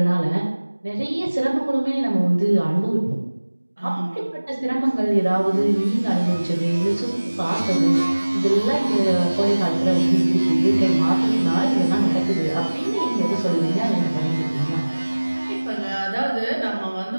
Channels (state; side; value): inverted; both; correlation -1.00